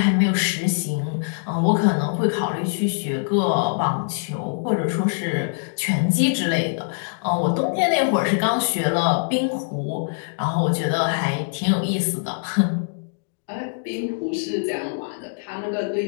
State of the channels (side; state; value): right; silent; digital silence